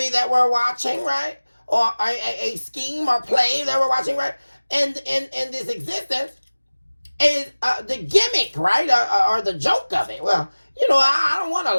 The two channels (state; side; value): inverted; both; correlation -1.00